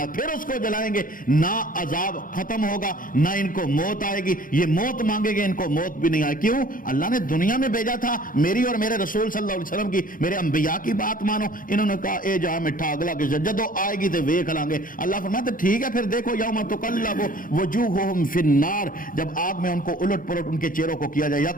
پھر اس کو جلائیں گے. نہ عذاب ختم ہوگا، نہ ان کو موت آئے گی. یہ موت مانگے گے، ان کو موت بھی نہیں آئے. کیوں؟ اللہ نے دنیا میں بھیجا تھا میری اور میرے رسول صلی اللہ علیہ وسلم کی، میرے انبیاء کی بات مانو. انہوں نے کہا اے جہاں مٹھا اگلا کہ جدو آئے گی تو ویکھ لیں گے. اللہ فرماتے ٹھیک ہے پھر دیکھو یوم تقلب وجوہہم فی النار، جب آگ میں ان کو الٹ پلٹ ان کے چہروں کو کیا جائے.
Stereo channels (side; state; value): right; late; 0.40 ms